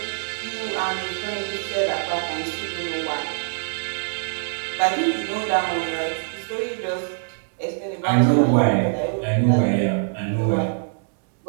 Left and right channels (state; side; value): silent; left; digital silence